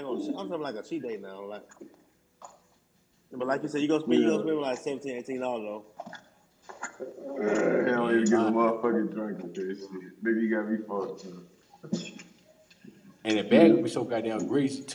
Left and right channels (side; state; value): both; identical; correlation 1.00